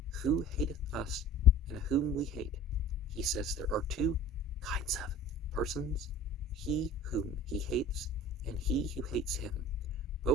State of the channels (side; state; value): both; normal; correlation 0.42